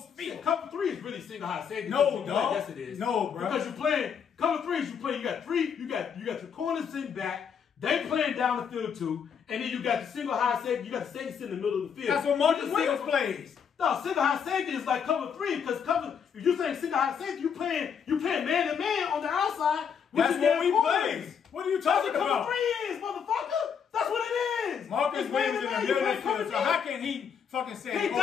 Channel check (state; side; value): quieter; right; 7.2 dB